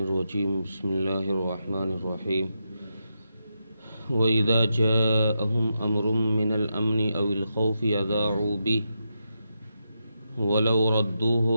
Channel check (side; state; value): both; inverted; correlation -0.86